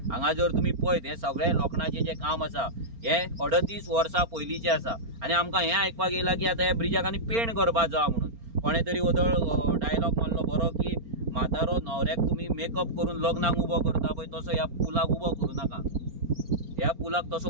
हांगा जर तुमी पळयत हे सगळे लोखणाचें जे काम आसा हे 38 वर्सां पयलींचें आसा आनी आमकां हें आयकपाक येयला की आतां ह्या ब्रिजाक आनी पेंट करपाक जाय म्हणून। कोणे तरी वदळ डायलॉग मारलो बरो की म्हातारो न्हवऱ्याक तुमी मेकअप करून लग्नाक उबो करता पळय तसो ह्या पुलाक उबो करूं नाका, ह्या पुलाक तसो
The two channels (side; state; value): left; late; 4.4 ms